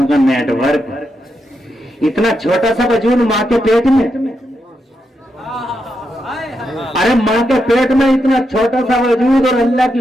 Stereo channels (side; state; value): both; normal; correlation 0.84